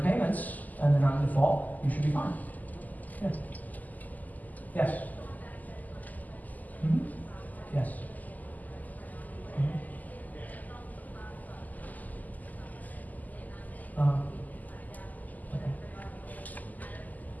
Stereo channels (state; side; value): late; right; 0.081 ms